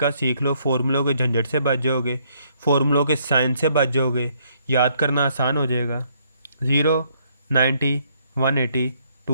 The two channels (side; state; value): both; inverted; correlation -0.69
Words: सीख लो, फॉर्मूलों के झंझट से बच जाओगे, फॉर्मूलों के साइन से बच जाओगे, याद करना आसान हो जाएगा। 0, 90, 180,